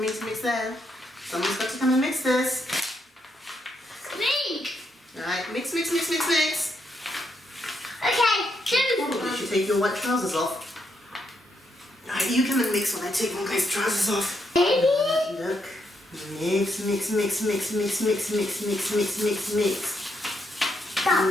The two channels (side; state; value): both; normal; correlation 0.78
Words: mix there. Someone's got to come and mix this. Me. Alright, mix, mix, mix, mix, mix. Okay, You should take your white trousers off. Alright, you come and mix while I take my guy's trousers off. Baby. Look. Mix, mix, mix, mix, mix, mix, mix, mix, mix, mix, mix.